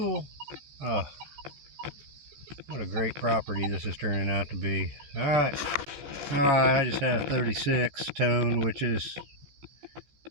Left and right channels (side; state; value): left; late; 14 ms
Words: Oh, what a great property this is turning out to be. Alright, I just had a 36 tone, which is